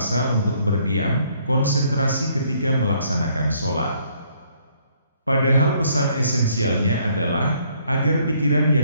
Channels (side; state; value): both; inverted; correlation -0.66